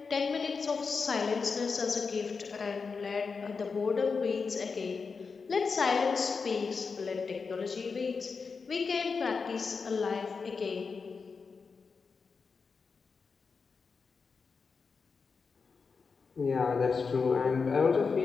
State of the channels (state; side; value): quieter; right; 5.0 dB